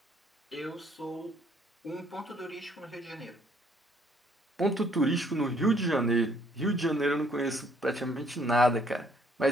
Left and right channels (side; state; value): both; normal; correlation 0.64